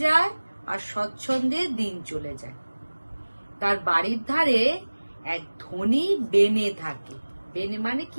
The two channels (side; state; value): both; inverted; correlation -1.00